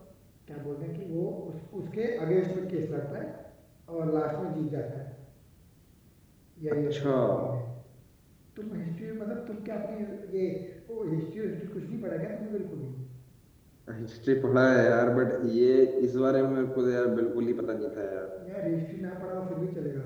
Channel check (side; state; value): both; identical; correlation 1.00